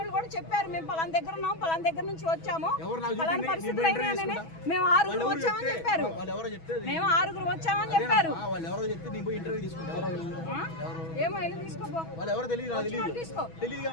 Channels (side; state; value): right; late; 6.1 ms